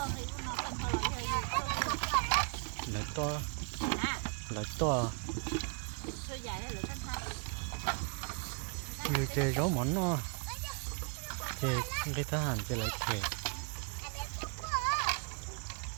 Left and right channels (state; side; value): quieter; left; 37.5 dB